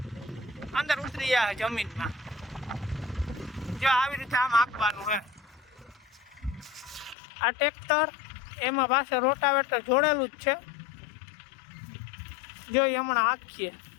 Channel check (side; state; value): right; drops out; at 7.2 s